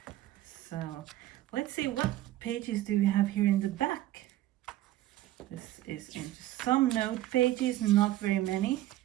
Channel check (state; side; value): quieter; left; 14.8 dB